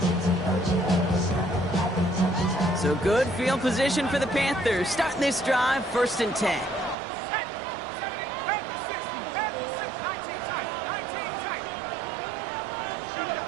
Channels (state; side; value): drops out; left; at 7.0 s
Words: So good field position for the Panthers. Starting this drive, 1st and 10.